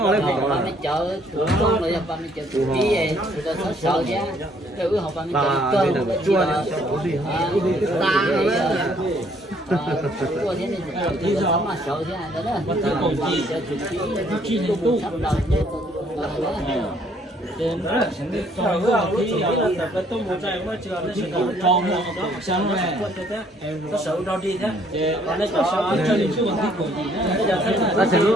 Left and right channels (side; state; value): both; normal; correlation 0.64